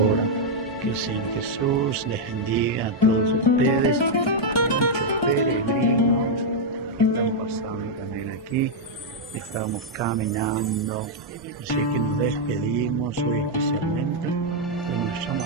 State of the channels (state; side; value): normal; both; correlation -0.03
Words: Que el Señor Jesús les bendiga a todos ustedes, muchos peregrinos que están pasando también aquí. Estamos caminando, así que nos despedimos hoy especialmente de nuestra